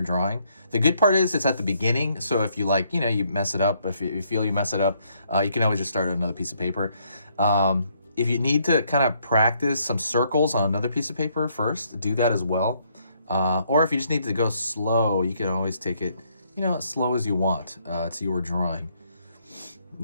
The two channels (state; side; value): inverted; both; correlation -0.71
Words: The good part is it's at the beginning, so if you like, you mess it up, if you feel you mess it up, you can always just start on another piece of paper. If you need to kind of practice some circles on another piece of paper first, do that as well. Or if you just need to go slow, you can always take it, as slow as you want. It's your drawing.